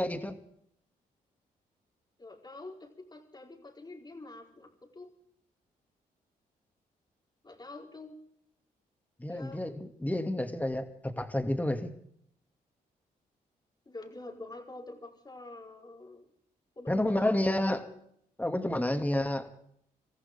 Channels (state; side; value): normal; both; correlation 0.94